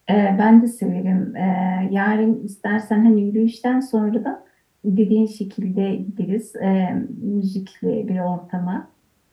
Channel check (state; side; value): identical; both; correlation 1.00